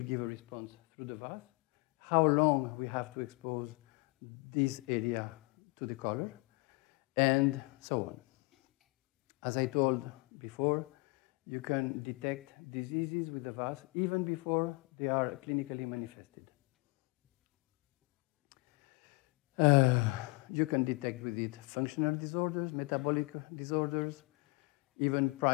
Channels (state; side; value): quieter; right; 26.7 dB